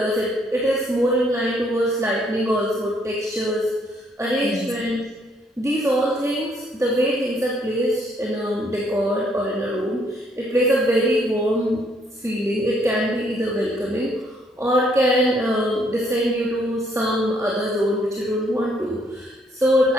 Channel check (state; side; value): normal; both; correlation 0.68